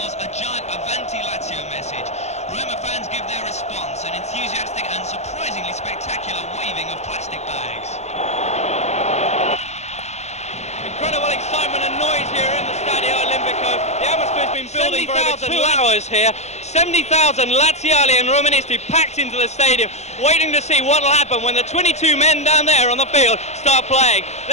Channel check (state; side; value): late; right; 0.33 ms